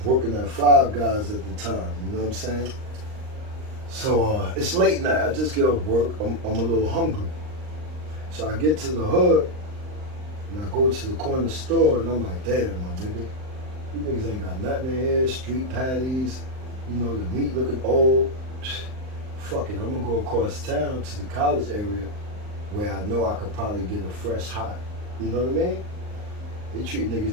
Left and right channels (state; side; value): late; left; 39 ms